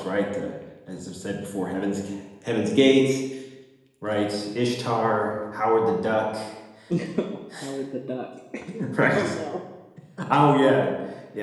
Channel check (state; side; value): identical; both; correlation 1.00